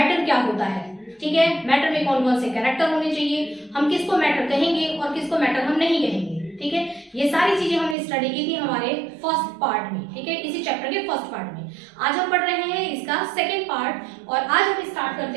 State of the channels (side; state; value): left; drops out; at 8.0 s